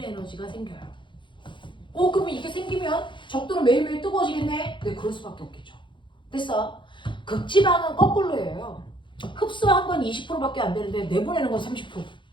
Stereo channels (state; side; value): late; right; 0.23 ms